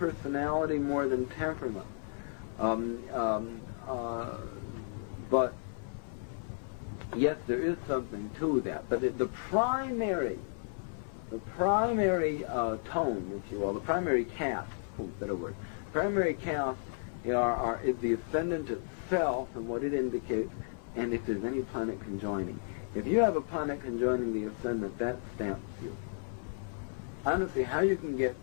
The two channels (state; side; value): silent; right; 56 dB below the other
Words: more than temperament. But yes, there is something to that. But the primary tone, if you will, the primary cast, better word, primary cast is the ascendant itself and what it indicates, and if there's any planet conjoining. If you have a planet conjoining the ascendant, that stamps you. I don't see how you can get